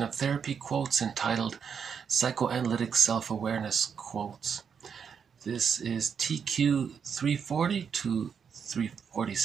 of therapy quotes entitled Psychoanalytic Self-Awareness Quotes. This is TQ 340 to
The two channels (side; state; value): left; quieter; 6.8 dB